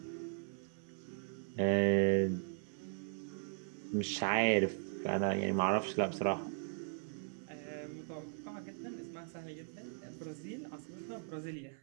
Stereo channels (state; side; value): silent; left; 52 dB below the other